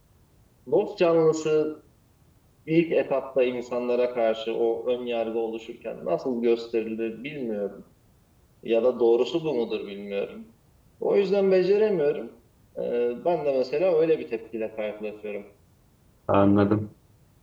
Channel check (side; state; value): both; identical; correlation 1.00